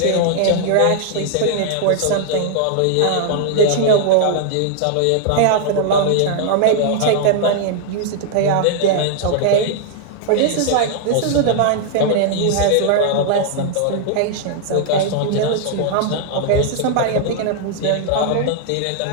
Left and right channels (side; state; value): both; different; correlation -0.01